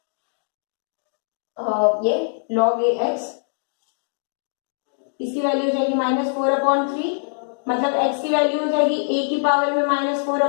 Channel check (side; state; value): right; silent; digital silence